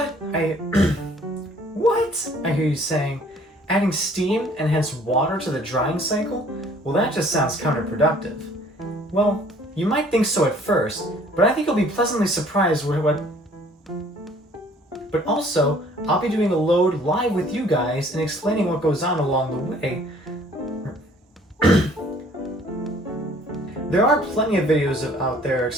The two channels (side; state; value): both; normal; correlation 0.56